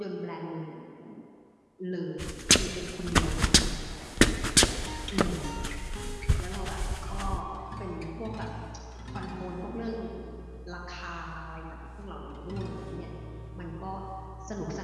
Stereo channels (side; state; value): both; identical; correlation 1.00